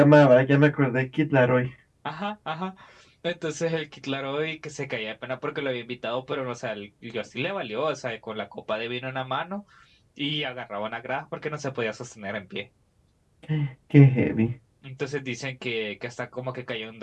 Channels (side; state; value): both; identical; correlation 1.00